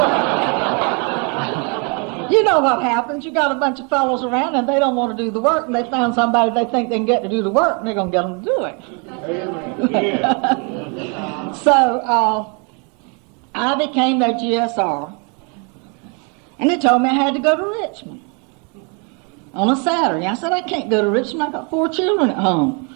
You know what happens. You got a bunch of fellows around and they don't want to do the work, and they found somebody they think they can get to do the work, and they're going to get them to do it. So I became their GSR, and they told me I had to go to Richmond on a Saturday. I said, I can't go to Richmond. I got 4 children at home.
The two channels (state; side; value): quieter; left; 35.2 dB